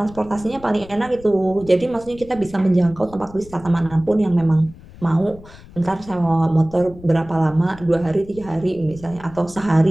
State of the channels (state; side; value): noise; left; rumble, 19 dB below the sound